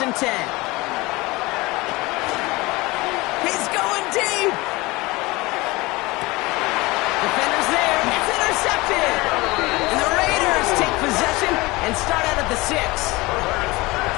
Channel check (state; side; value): quieter; right; 22.1 dB